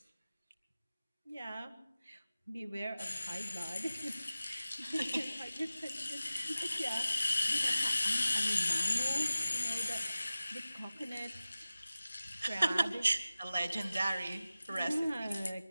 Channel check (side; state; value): both; inverted; correlation -0.96